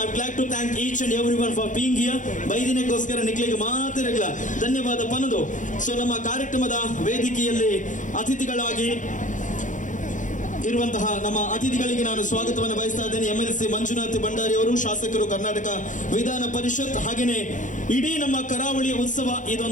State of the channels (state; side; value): late; right; 0.37 ms